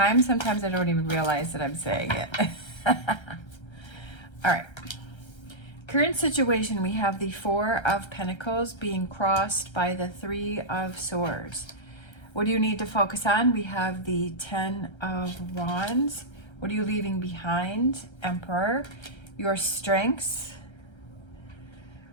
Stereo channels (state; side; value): late; right; 1.3 ms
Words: sometimes I don't even realize that I'm saying it. All right. Current situation, we have the Four of Pentacles being crossed by the Three of Swords. What do you need to focus on? We have the Ten of Wands. What are you leaving behind? Emperor. Your strengths.